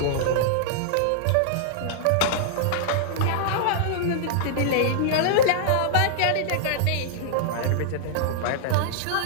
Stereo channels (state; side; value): different; both; correlation -0.02